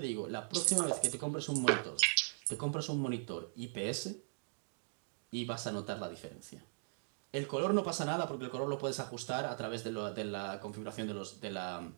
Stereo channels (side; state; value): left; silent; digital silence